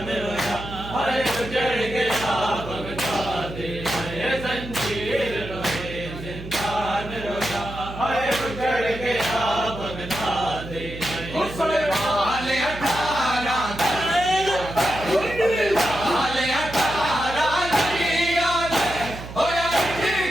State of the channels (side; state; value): right; noise; hum, 11 dB below the sound